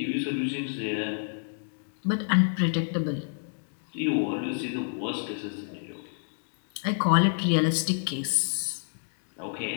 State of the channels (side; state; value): right; silent; digital silence